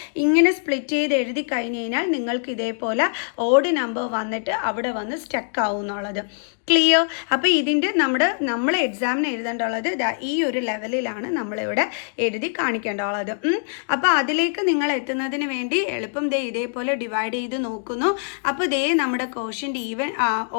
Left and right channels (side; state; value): right; silent; digital silence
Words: ഇങ്ങനെ സ്പ്ലിറ്റ് ചെയ്ത് എഴുതി കഴിഞ്ഞ് കഴിഞ്ഞാൽ നിങ്ങൾക്ക് ഇതേപോലെ ഓഡ് നമ്പർ വന്നിട്ട് അവിടെ വന്ന് സ്റ്റക്ക് ആവുന്നു. എന്നുള്ളത്. ക്ലിയർ? അപ്പോൾ ഇതിൻ്റെ നമ്മൾ എക്സാമിന് എഴുതേണ്ടുള്ളത് ഈ ഒരു ലെവലിലാണ് നമ്മളിവിടെ എഴുതി കാണിക്കേണ്ടുള്ളത്. അപ്പോൾ അതിലേക്ക് നിങ്ങൾ എത്തുന്നതിന് വേണ്ടി എളുപ്പം ഇതേപോലെ ഡിവൈഡ് ചെയ്ത് നോക്കുന്നു. അപ്പോൾ നമ്മുടെ ക്വോഷ്യൻ്റ് ഈവൻ